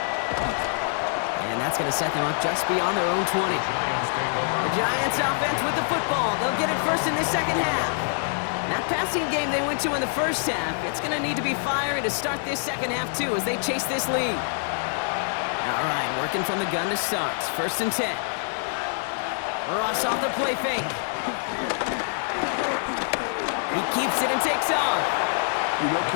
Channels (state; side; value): silent; right; 55 dB below the other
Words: And that's going to set them up just beyond their own 20. The Giants offense with the football. They'll get it first in this second half. That passing game they went to in the first half, it's going to need to be fiery to start this second half too as they chase this lead. All right, working from the gun to start. First and 10. Ross off the play fake. He keeps it and takes off. You know,